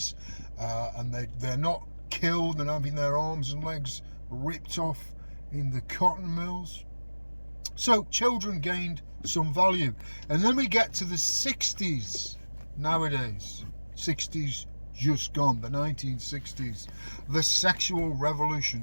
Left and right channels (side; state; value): both; inverted; correlation -1.00